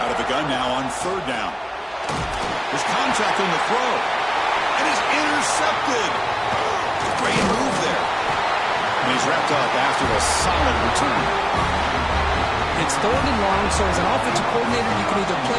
Out of the gun now on third down. There's contact on the throw. And he's intercepted. Great move there. And he's wrapped up after a solid return. It's third and long, so as an offensive coordinator, you can either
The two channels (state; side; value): identical; both; correlation 1.00